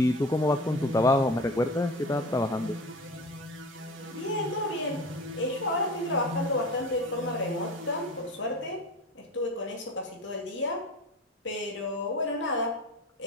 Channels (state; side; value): normal; both; correlation 0.34